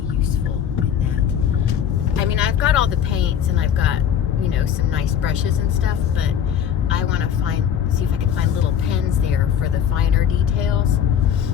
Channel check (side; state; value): right; quieter; 8.8 dB